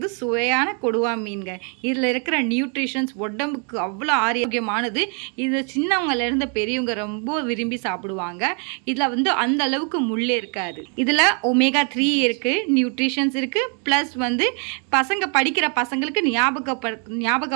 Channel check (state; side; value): quieter; left; 38.6 dB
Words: சுவையான கொடுவா மீன்க. இதில் இருக்கிற நியூட்ரிஷன்ஸ் உடம்புக்கு அவ்வளோ ஆரோக்கியமானது. இது சின்னவங்கலேருந்து பெரியவங்க ரொம்ப விரும்பி சாப்பிடுவாங்க. இதில் அந்த அளவுக்கு முள்ளே இருக்காது. இதில் ஒமேகா 3 இருக்குது, நியூட்ரிஷன்ஸ் இருக்குது. ப்ளஸ் பசங்க படிக்கிற பசங்களுக்கு